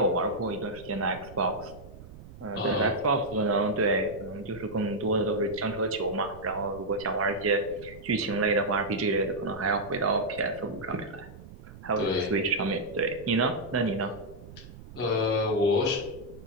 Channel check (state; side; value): noise; right; rumble, 17 dB below the sound